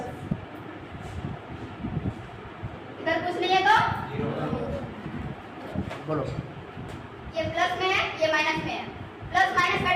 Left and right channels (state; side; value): identical; both; correlation 1.00